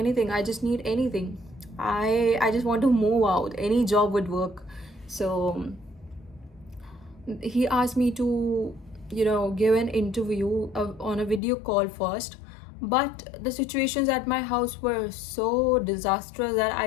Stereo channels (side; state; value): right; drops out; at 11.4 s